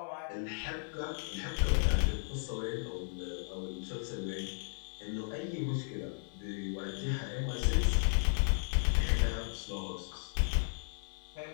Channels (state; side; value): silent; right; digital silence